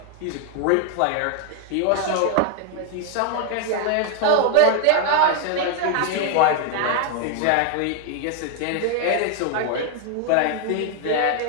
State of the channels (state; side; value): different; both; correlation 0.00